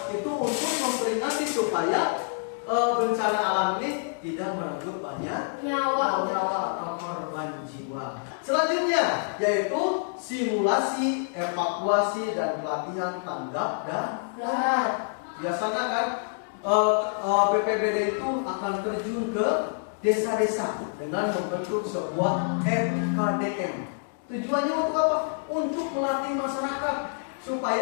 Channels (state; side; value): silent; right; digital silence